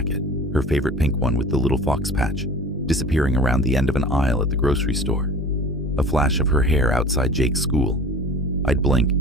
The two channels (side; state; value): both; normal; correlation 0.41